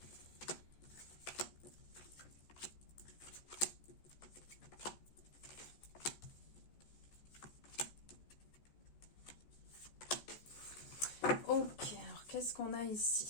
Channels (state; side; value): late; right; 14 ms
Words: ok, alors qu'est-ce qu'on a